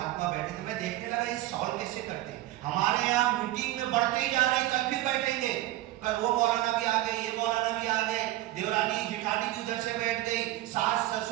بیٹھے تھے، میں دیکھنے لگا یہ سالو کیسے کرتے ہیں، ہمارے یہاں میٹنگ میں بڑھتے ہی جا رہے، کل بھی بیٹھیں گے، کل وہ مولانا بھی آ گئے، یہ مولانا بھی آ گئے، دیورانی جٹھانی بھی ادھر سے بیٹھ گئی، ساس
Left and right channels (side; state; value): left; quieter; 16.0 dB